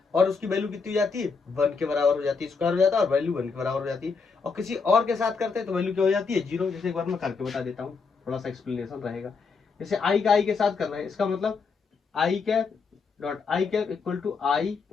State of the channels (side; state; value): right; quieter; 5.0 dB